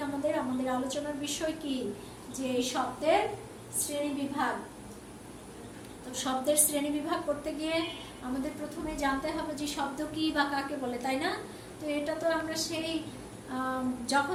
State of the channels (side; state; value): both; identical; correlation 1.00